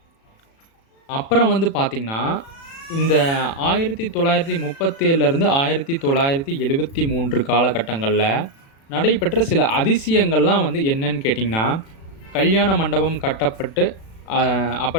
அப்புறம் வந்து பார்த்தீங்கன்னா, இந்த 1937லேருந்து 1973 காலகட்டங்கள்ல நடைபெற்ற சில அதிசயங்கள்லாம் வந்து என்னன்னு கேட்டிங்கன்னா, கல்யாண மண்டபம் கட்டப்பட்டு, அ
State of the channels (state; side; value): late; right; 36 ms